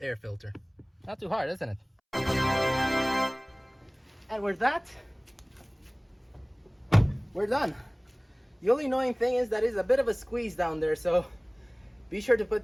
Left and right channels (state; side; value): identical; both; correlation 1.00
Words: air filter. Not too hard, isn't it? And with that, we're done. The only annoying thing is that it's a bit of a squeeze down there, so be sure to